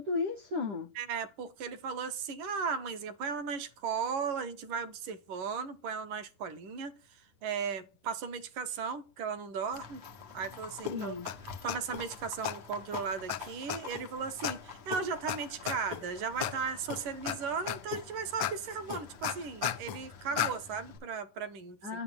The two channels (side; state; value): left; late; 10 ms